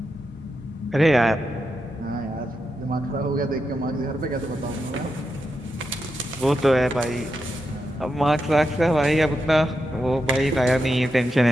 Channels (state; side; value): normal; both; correlation 0.86